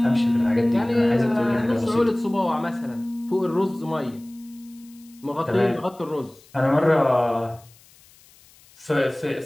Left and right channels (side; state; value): left; noise; hiss, 27 dB below the sound